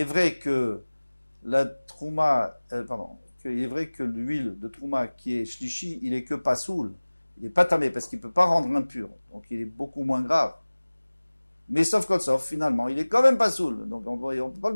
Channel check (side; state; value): both; inverted; correlation -1.00